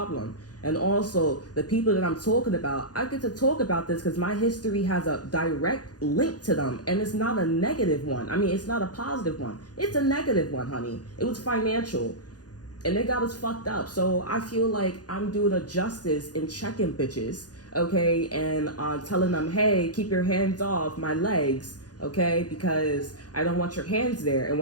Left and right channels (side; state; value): right; late; 0.68 ms